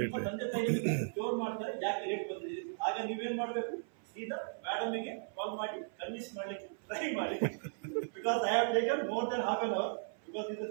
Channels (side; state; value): left; silent; 53 dB below the other